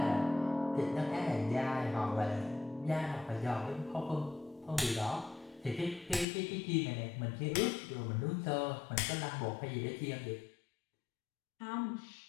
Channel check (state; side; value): drops out; right; at 6.2 s